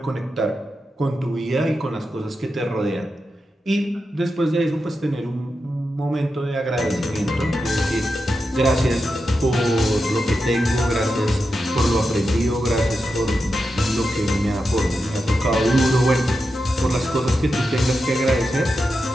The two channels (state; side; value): normal; both; correlation 0.89